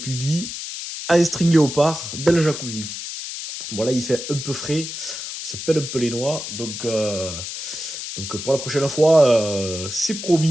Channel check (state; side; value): noise; left; hiss, 7 dB below the sound